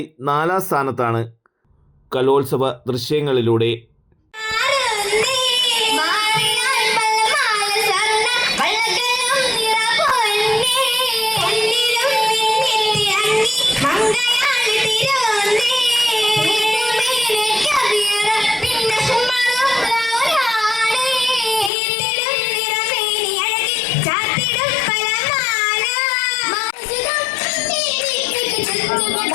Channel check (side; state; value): right; drops out; at 21.7 s